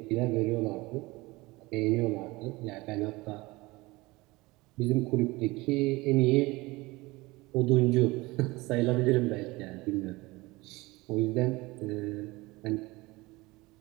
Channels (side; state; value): left; quieter; 21.9 dB